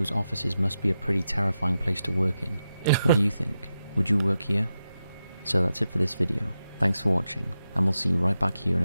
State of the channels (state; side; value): inverted; both; correlation -0.89